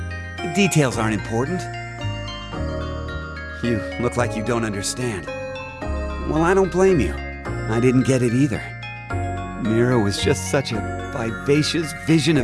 Details aren't important. You look like you don't understand. Well, I don't blame you. I didn't get it either. Mira was just such a vivacious vision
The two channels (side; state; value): both; identical; correlation 1.00